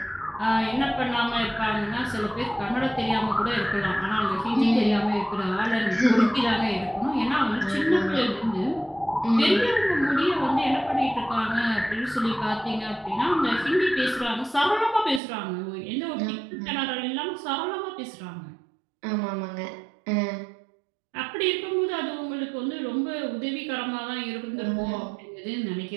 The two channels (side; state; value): left; drops out; at 15.2 s